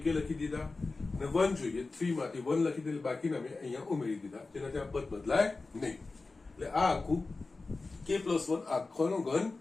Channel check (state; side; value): quieter; right; 3.7 dB